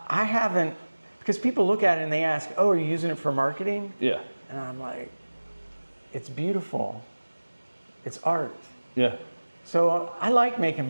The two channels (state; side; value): inverted; both; correlation -1.00